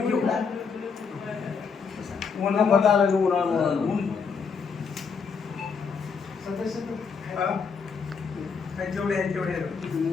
घेऊ. जेवढे आहेत तेवढे.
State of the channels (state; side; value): quieter; right; 5.7 dB